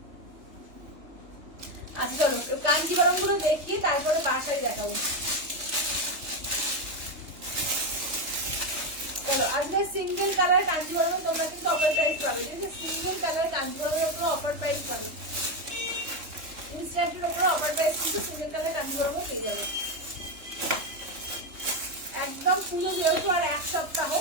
আচ্ছা চলো কাঞ্জিবরম গুলো দেখিয়ে তারপরে বাসায় দেখাবো। চলো আজকে সিঙ্গেল কালার কাঞ্জিবরমে তোমরা কিন্তু অফার প্রাইস পাবে, ঠিক আছে? সিঙ্গেল কালার কাঞ্জিবরমের উপরে অফার প্রাইস পাবে, ইনস্ট্যান্টের উপরে অফার প্রাইস কিন্তু সিঙ্গেল কালার কাঞ্জিবরমে পেয়ে যাবে একদম। পুরো যেহেতু আর এক সপ্তাহ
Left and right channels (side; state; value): left; late; 3.3 ms